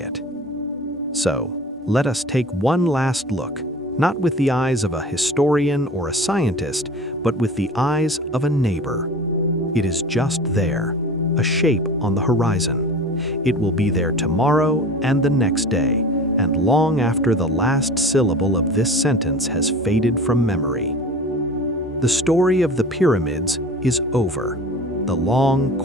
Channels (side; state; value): both; normal; correlation 0.38